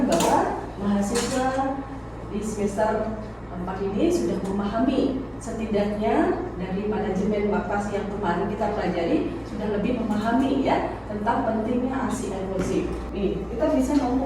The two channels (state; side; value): identical; both; correlation 1.00